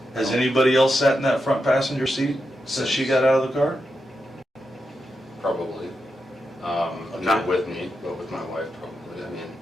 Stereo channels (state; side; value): normal; both; correlation 0.87